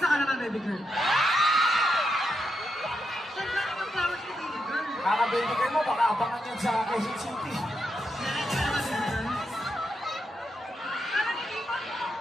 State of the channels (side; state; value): both; normal; correlation 0.84